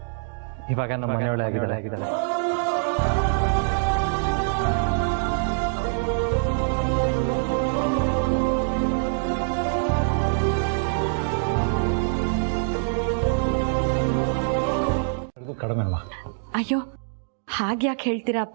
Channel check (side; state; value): left; silent; digital silence